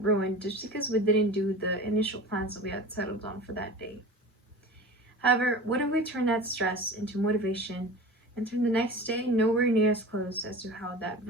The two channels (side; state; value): both; normal; correlation 0.34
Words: ruined just because we didn't do the initial plans that we had settled on for that day. However, what if we turn that stress into motivation and turn the next day nowhere near as close as to how that